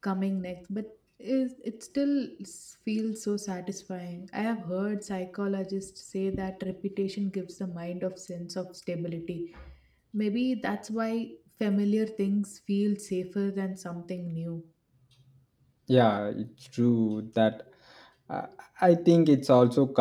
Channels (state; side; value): identical; both; correlation 1.00